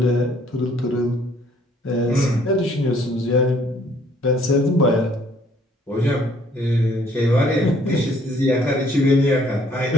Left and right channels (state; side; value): normal; both; correlation 0.62